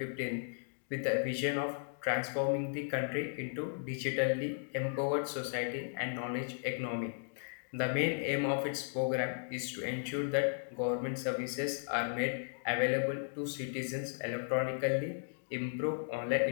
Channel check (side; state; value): right; silent; digital silence